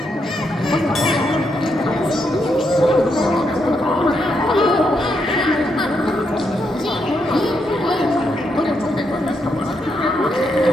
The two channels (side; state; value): both; normal; correlation 0.80